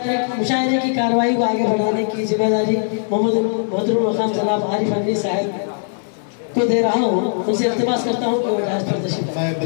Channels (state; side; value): silent; right; 66 dB below the other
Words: مشاعرے کی کارروائی کو آگے بڑھانے کی ذمہ داری محترم مقام جناب عارف امین صاحب کو دے رہا ہوں. ان سے التماس کرتا ہوں کہ وہ جہاز پر تشریف لائیں. میں